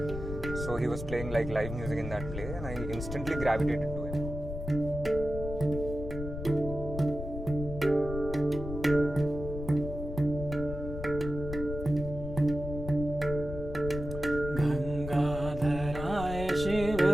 So he was playing like live music in that play, and I instantly gravitated to him. गंगाधराय Shiv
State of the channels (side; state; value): left; noise; rumble, 7 dB below the sound